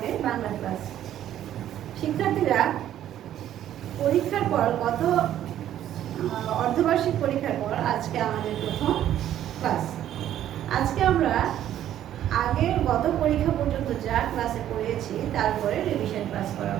বাংলা ক্লাস। শিক্ষার্থীরা পরীক্ষার পর অর্ধবার্ষিক পরীক্ষার পর আজকে আমাদের প্রথম ক্লাস। আজকে আমরা গত পরীক্ষা পর্যন্ত যা ক্লাসে পড়িয়েছি তারপরে রিভিশন ক্লাস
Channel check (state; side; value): quieter; left; 11.6 dB